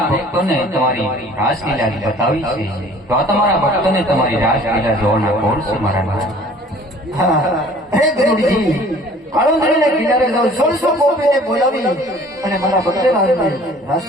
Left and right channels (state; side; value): normal; both; correlation 0.51